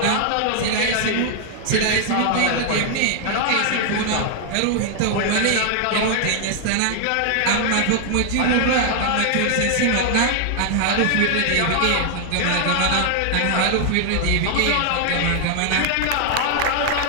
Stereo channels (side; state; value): both; different; correlation 0.00